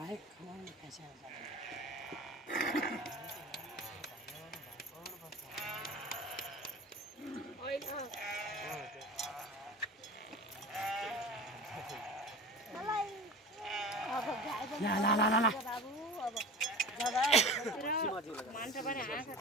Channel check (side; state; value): both; normal; correlation 0.34